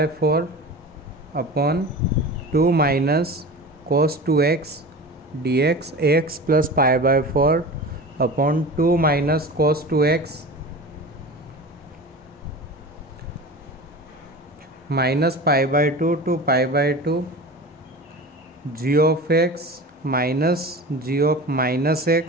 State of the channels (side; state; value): both; normal; correlation 0.33